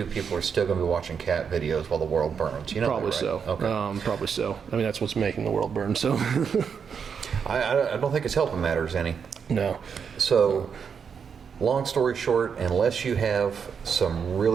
people are still going to be watching cat videos while the world burns. Probably that, right? so. Okay. Probably so. That's what's making the world burn. So I don't think it's helping matters any. No. So, long story short, unless you have some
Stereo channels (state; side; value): quieter; left; 6.6 dB